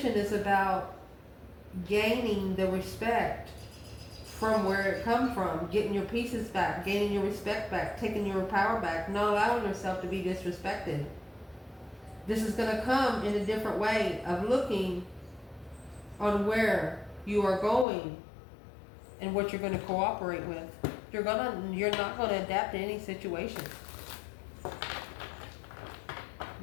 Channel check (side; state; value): right; drops out; at 17.9 s